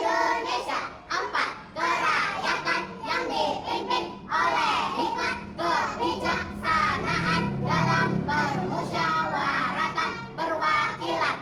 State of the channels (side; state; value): both; identical; correlation 1.00